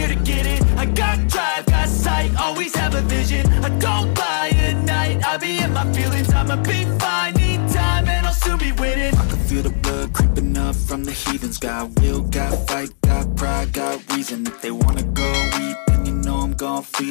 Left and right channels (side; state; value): right; silent; digital silence